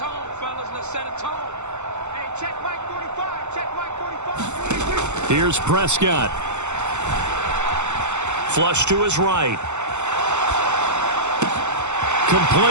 fellas. Let's set a tone. Hey, check mic 45. Check mic 45. Here's Prescott. Flush to his right.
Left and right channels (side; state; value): left; late; 0.83 ms